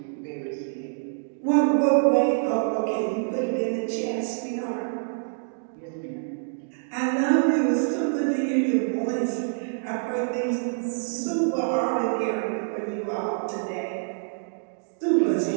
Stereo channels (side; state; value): left; silent; digital silence